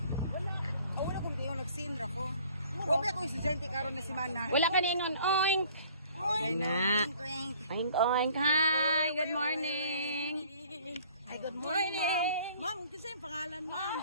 Wala kong di ko nagsinra ko. Wabi akong estudyante karon na si Mana. Wala ka ningon. Oink. Okay na. Oink. Hi. Good morning. Ay, good morning, ma'am. Ma'am, kasi yung pangalan,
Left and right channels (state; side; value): inverted; both; correlation -0.54